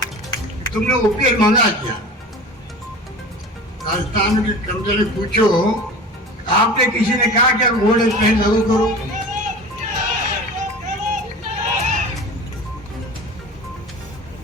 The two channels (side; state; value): both; normal; correlation 0.36